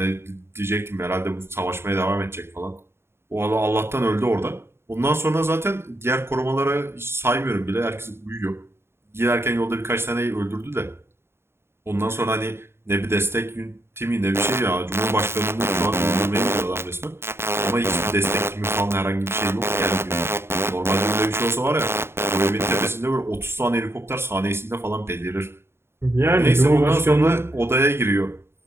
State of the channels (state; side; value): late; left; 0.12 ms